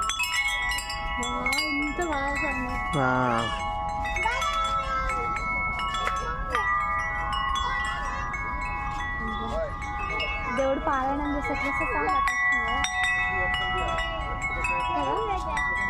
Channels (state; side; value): identical; both; correlation 1.00